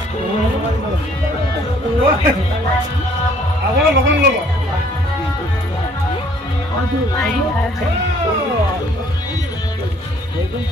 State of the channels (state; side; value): normal; both; correlation 0.60